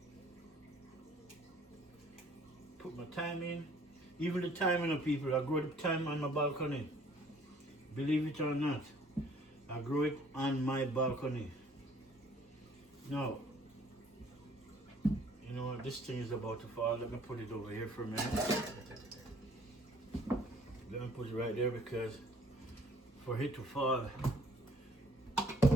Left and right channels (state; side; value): normal; both; correlation 0.58